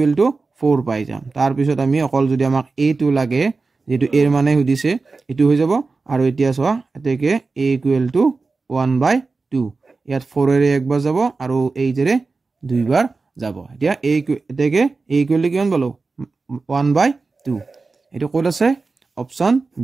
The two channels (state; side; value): quieter; left; 4.0 dB